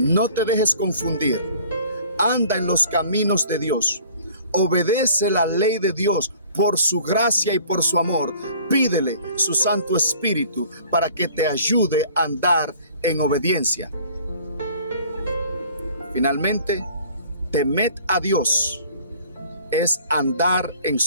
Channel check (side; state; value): both; inverted; correlation -0.51